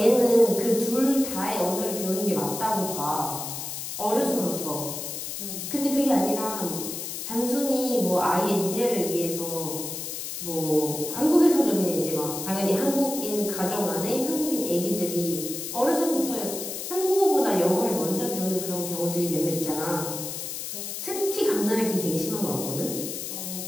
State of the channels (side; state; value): left; noise; hiss, 6 dB below the sound